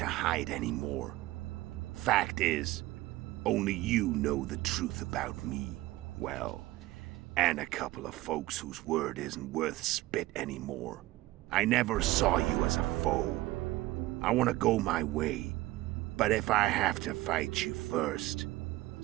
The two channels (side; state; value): left; quieter; 17.8 dB